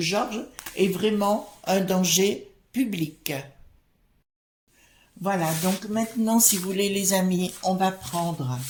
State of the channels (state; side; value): identical; both; correlation 1.00